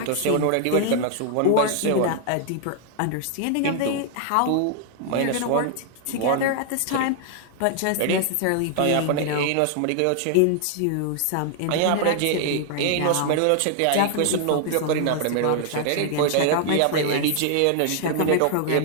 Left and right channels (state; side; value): different; both; correlation 0.00